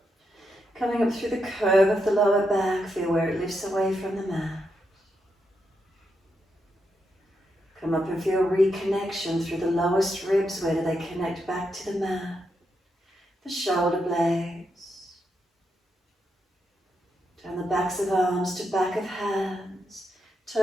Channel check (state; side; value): normal; both; correlation 0.83